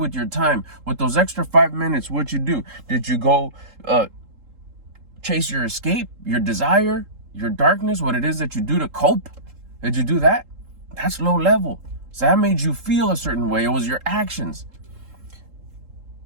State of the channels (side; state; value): left; late; 3.7 ms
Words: your time? With those extra 5 minutes, what'd you do? Did you go chase your escape, your desire, your darkness, what it is that you do to cope? Did you do that? That's low level. So that made you feel a certain way. It was your actions.